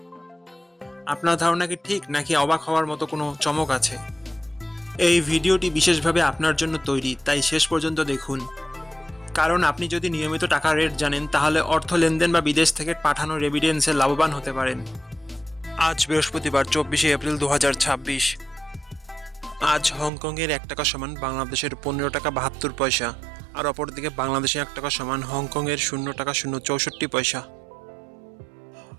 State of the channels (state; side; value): drops out; left; at 20.1 s